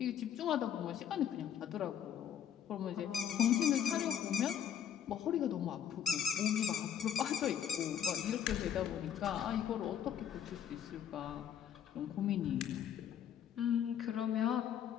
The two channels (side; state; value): right; quieter; 9.3 dB